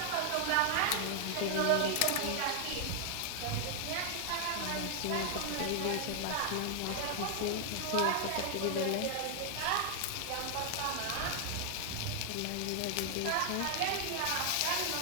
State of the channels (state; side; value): different; both; correlation 0.00